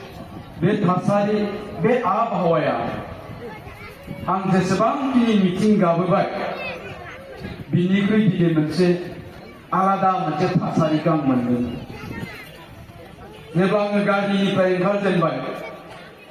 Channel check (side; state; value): both; identical; correlation 1.00